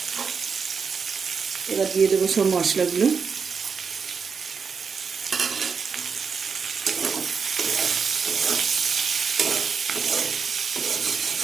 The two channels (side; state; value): left; quieter; 5.8 dB